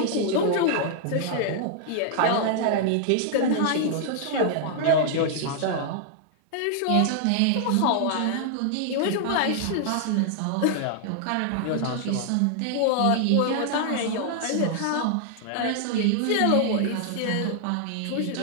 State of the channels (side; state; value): both; different; correlation -0.01